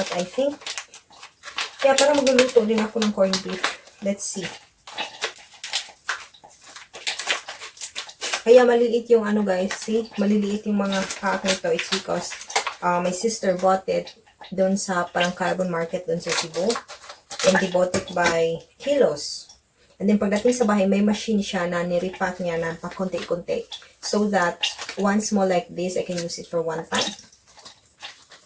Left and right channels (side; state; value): both; identical; correlation 1.00